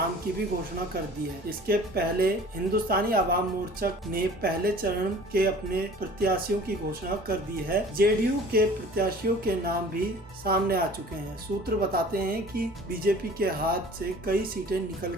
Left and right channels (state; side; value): normal; both; correlation 0.47